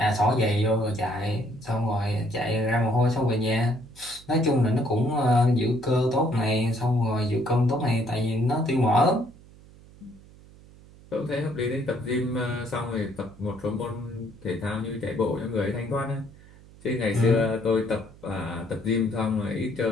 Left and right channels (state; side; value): noise; right; hum, 23 dB below the sound